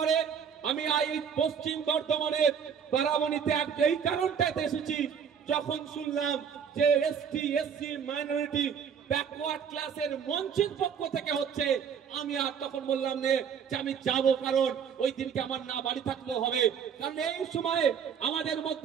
আমি এই পশ্চিম বর্ধমানের বারাবণীতে এই কারণটাতে এসেছি, যখন শুনলাম যে এসটি এসসি মাইনরিটি ব্যাকওয়ার্ড ক্লাসের মঞ্চের পক্ষ থেকে হচ্ছে, আমি আর তখন বললাম যে আমি যাব, কারণ ওই দিনকে আমার না বাড়ি থাকলেও হবে। কারণ এই সময়ে আমাদের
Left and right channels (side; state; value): left; quieter; 7.3 dB